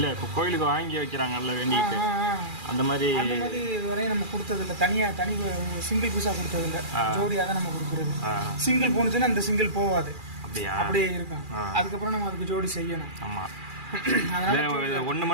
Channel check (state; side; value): late; left; 2.4 ms